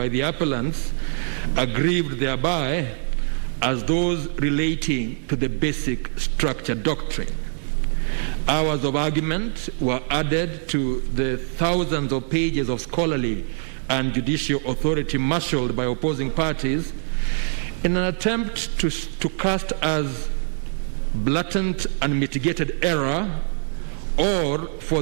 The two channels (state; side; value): silent; left; 63 dB below the other